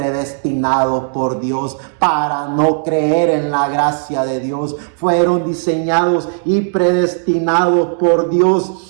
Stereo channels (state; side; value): silent; left; digital silence